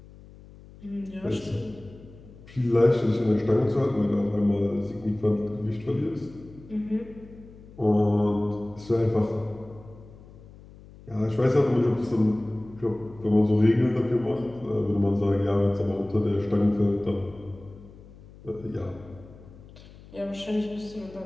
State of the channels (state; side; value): noise; left; hum, 20 dB below the sound